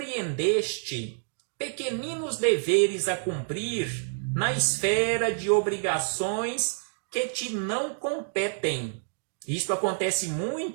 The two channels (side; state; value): left; silent; digital silence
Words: pequeninos deveres a cumprir na esfera de obrigações que te não competem. Isto acontece